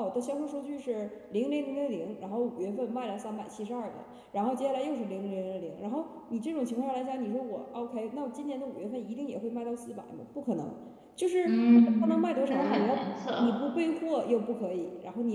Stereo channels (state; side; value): identical; both; correlation 1.00